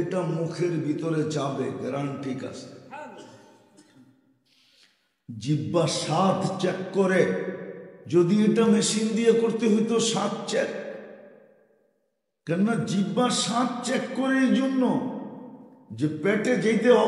মুখের ভিতরে যাবে, গ্রাম ঠিক আছে। জিহ্বা স্বাদ চেক করে, যদি এটা মেশিন দিয়ে করতে হইতো স্বাদ চেক, কেননা জিহ্বা স্বাদ চেক করে এই জন্য যে পেটে যেতে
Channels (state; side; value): identical; both; correlation 1.00